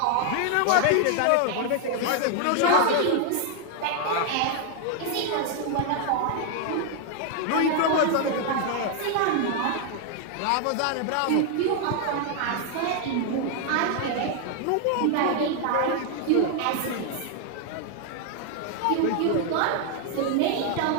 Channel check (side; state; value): both; different; correlation 0.00